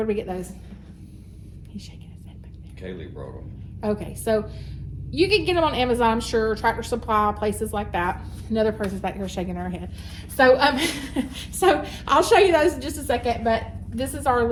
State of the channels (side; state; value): both; identical; correlation 1.00